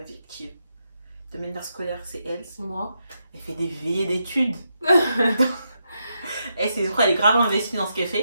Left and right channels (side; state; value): both; inverted; correlation -0.83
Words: virtuelle. De manière scolaire, c'est elle. C'est moi. Elle fait des veillées d'études. Et c'est elle est grave investie dans ce qu'elle